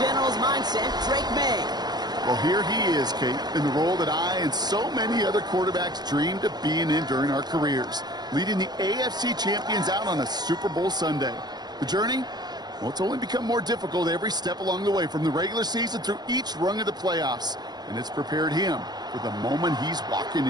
general's mindset, Drake May. Well, here he is, Kate, in the role that I and so many other quarterbacks dreamed of being in during our careers, leading the AFC champions out on a Super Bowl Sunday. The journey? Well, it's only become more difficult every step along the way, from the regular season through each rung of the playoffs, and it's prepared him for the moment he's walking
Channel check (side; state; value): left; late; 0.20 ms